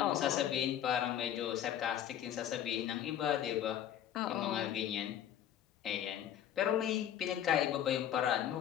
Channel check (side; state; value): right; quieter; 10.6 dB